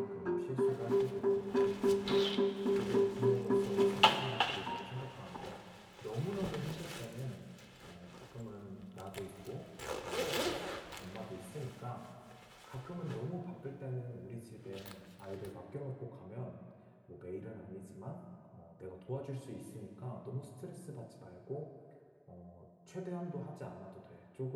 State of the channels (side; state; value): both; identical; correlation 1.00